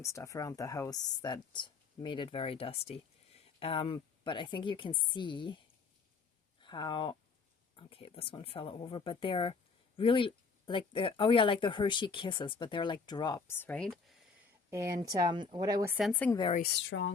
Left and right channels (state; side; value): quieter; right; 4.8 dB